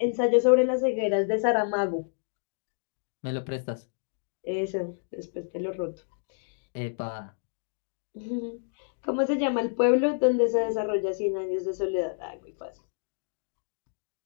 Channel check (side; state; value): right; silent; digital silence